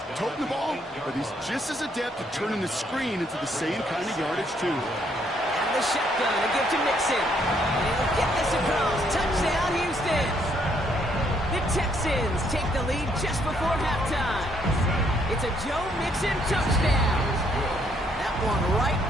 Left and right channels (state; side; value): normal; both; correlation 0.70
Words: toting the ball, but he's just as adept at turning the screen into the same kind of yardage, too. And the shotgun to give to Mixon. And he'll get this across. Touchdown, Houston. The Texans take the lead just before halftime. It's a Joe Mixon touchdown. That one right